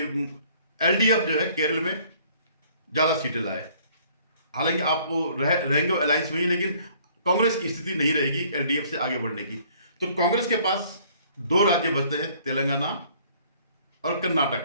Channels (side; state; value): both; inverted; correlation -0.58